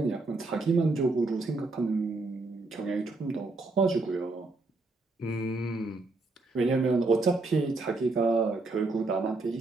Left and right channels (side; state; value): left; quieter; 3.3 dB